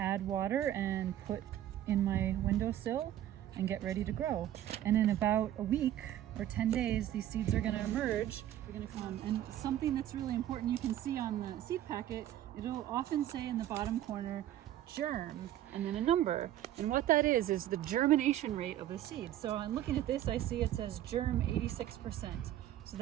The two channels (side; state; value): left; quieter; 12.4 dB